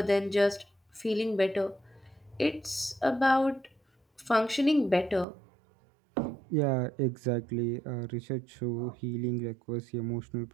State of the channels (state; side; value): drops out; left; at 5.2 s